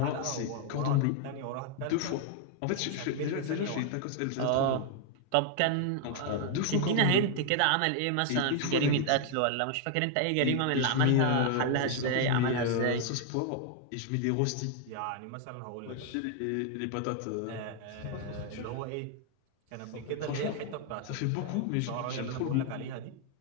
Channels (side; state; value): both; different; correlation 0.00